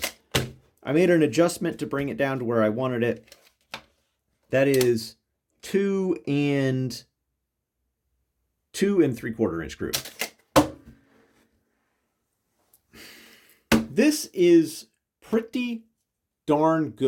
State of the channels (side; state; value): both; identical; correlation 1.00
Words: I made an adjustment to bring it down to where I wanted it. That is 2 3/4 inch group. This is pretty darn